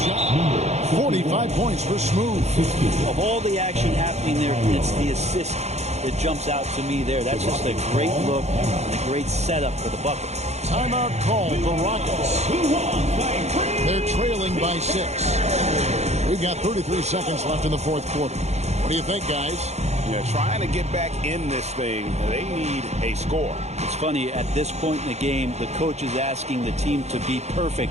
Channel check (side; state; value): left; late; 0.32 ms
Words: shot. 45 points for Smooth. Of all the action happening there, it's the assist that jumps out to me there. That's just a great look and a great setup for the bucket. Timeout call for Rockets. They're trailing by 6. We've got 33 seconds left in the fourth quarter. What do you think, guys? Yeah, trying to get back in this thing, they need a score. It's funny, at this point in the game, the coach is asking the team to be